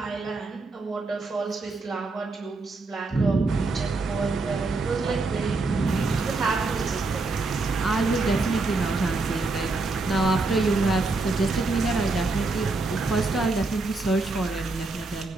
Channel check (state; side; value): quieter; left; 3.5 dB